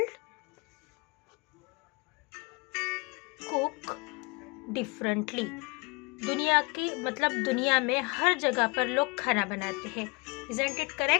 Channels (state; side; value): quieter; right; 29.0 dB